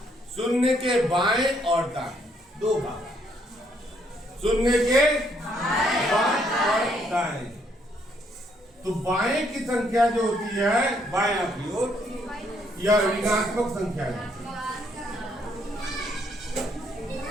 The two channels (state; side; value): normal; both; correlation 0.70